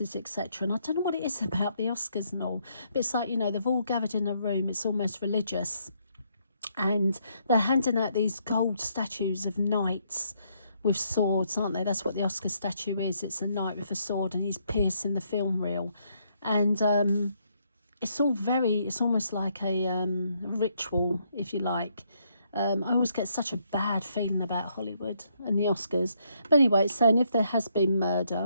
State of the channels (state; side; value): inverted; both; correlation -0.73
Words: etc. And I don't know what it is about the Oscars and all, but it's like, you know, they've all gathered in a room, it's almost religious, and they're handing out these gold statues of knights with swords, aren't they? That's what the Oscar statue is. It's a knight with a sword, and he's piercing the film reel. And it's all very, it's almost like a ritual, if you like. I always get such a bad feeling about Hollywood and the Oscars. But anyway, it's saying if there has been murder,